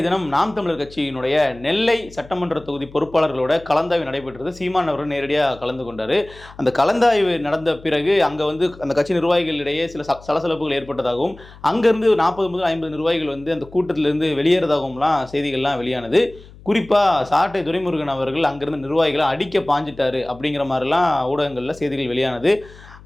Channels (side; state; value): left; noise; hum, 21 dB below the sound